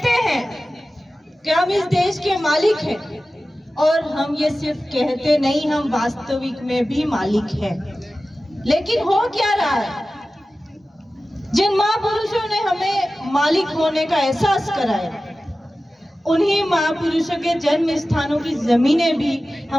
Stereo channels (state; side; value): normal; both; correlation 0.95